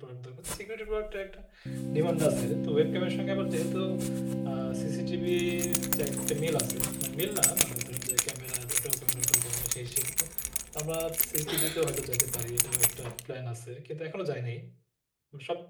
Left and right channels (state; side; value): identical; both; correlation 1.00